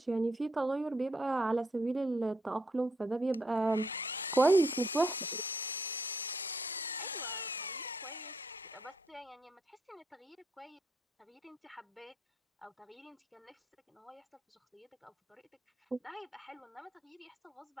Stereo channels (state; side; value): normal; both; correlation 0.75